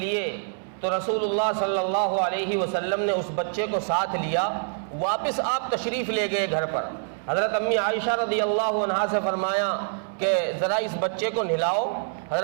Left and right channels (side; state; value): left; silent; 61 dB below the other